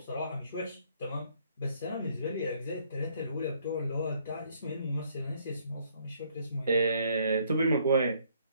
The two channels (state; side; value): inverted; both; correlation -0.65